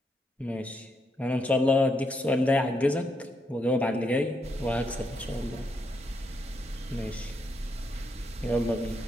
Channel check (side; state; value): both; normal; correlation 0.79